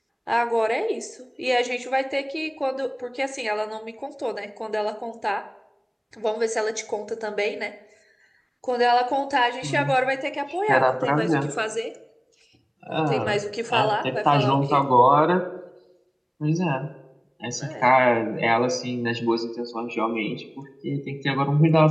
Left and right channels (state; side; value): identical; both; correlation 1.00